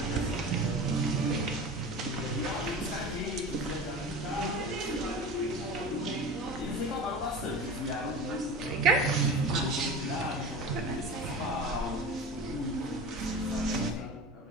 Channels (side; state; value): both; normal; correlation 0.33